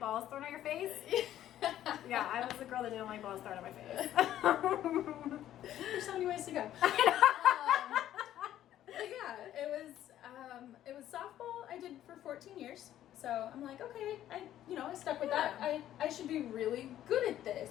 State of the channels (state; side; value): quieter; right; 12.1 dB